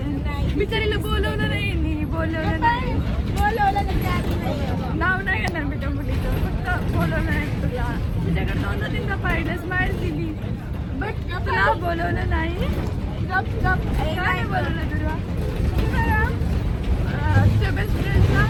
मी तरीला बोलवलं नाही. बोलवलं नाही. नाव नाही घेणार मी त्या मुलीचं. फक्त बोलवलं नाही तुला. तुझ्याकडे 2-3दा पाहिलं स्माईल दिली बट तुला बोलवलं नाही. काय बोलवलं तुला. तुझ्या बेस्ट फ्रेंडला.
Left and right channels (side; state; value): both; identical; correlation 1.00